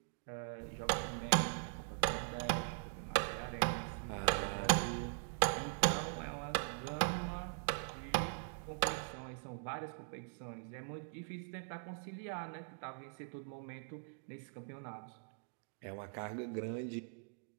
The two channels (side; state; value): left; silent; digital silence